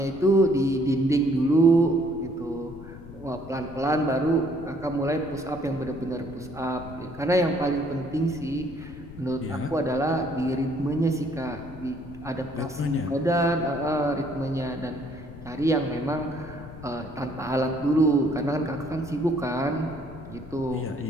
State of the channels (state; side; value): noise; left; rumble, 15 dB below the sound